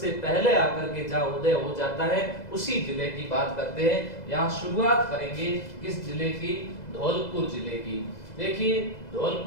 पहले आकर के जहां उदय हो जाता है, उसी जिले की बात करते हैं। यहाँ शुरुआत करेंगे किस जिले की? धौलपुर जिले की। देखिए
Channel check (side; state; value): right; late; 2.0 ms